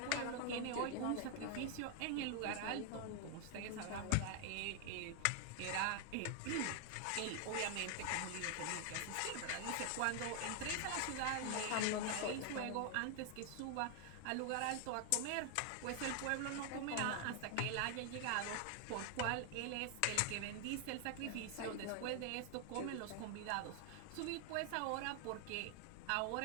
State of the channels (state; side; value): different; both; correlation 0.00